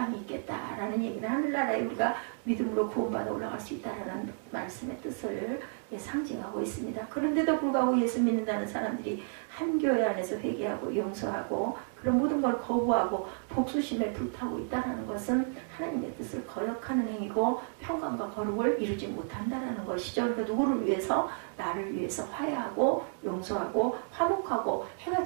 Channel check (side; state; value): left; silent; 57 dB below the other